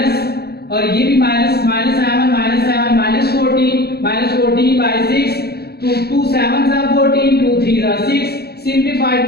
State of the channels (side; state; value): right; late; 0.46 ms